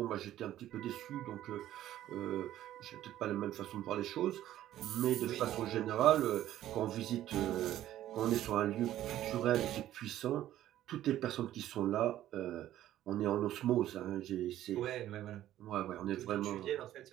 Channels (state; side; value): quieter; left; 13.0 dB